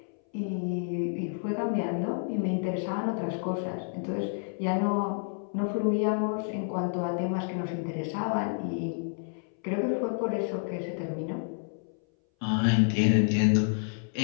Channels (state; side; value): silent; right; 58 dB below the other